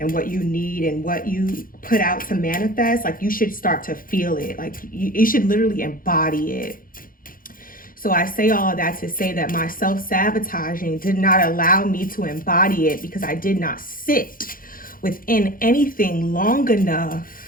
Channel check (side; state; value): right; late; 0.41 ms